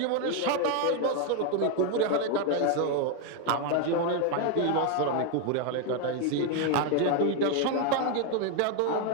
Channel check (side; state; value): both; different; correlation 0.01